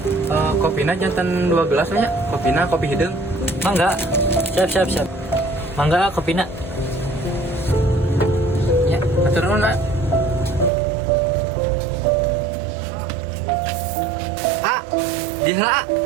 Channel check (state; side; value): drops out; left; at 10.7 s